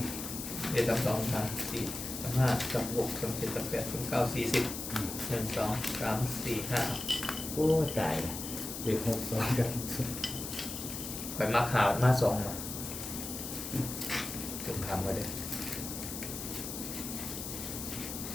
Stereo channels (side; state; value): left; noise; hiss, 7 dB below the sound